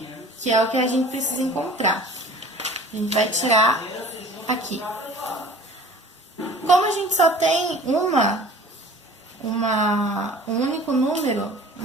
que é o que a gente precisa encontrar. A gente vai tirar aqui. Como a gente só tem um único número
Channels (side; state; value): both; normal; correlation 0.45